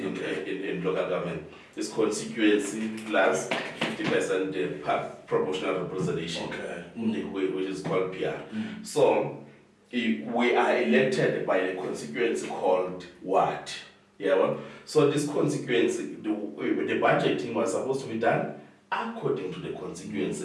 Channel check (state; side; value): identical; both; correlation 1.00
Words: local government. It's constituency plus 50% proportional representation, which is called PR. So we are elected by a constituency called ward. So this constituency, the budgeting was supposed to be done according to the